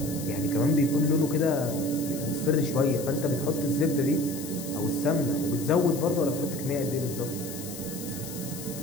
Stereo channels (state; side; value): noise; left; hiss, 11 dB below the sound